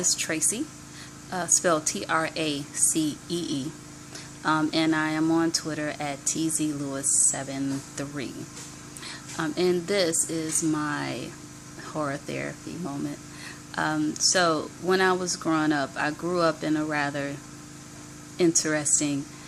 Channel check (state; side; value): identical; both; correlation 1.00